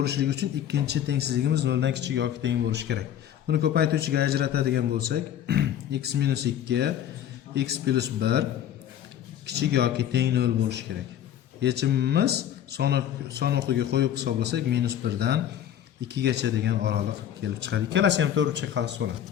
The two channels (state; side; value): quieter; right; 10.6 dB